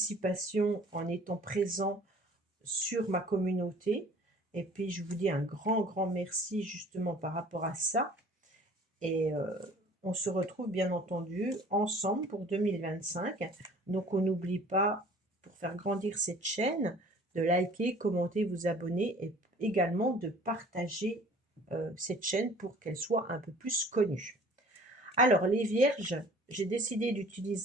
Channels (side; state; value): both; normal; correlation 0.50